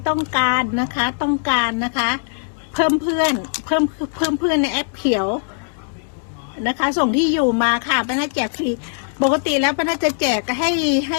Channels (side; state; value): right; silent; 66 dB below the other